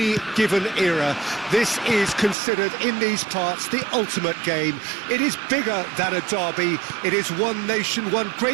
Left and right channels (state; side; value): drops out; left; at 2.4 s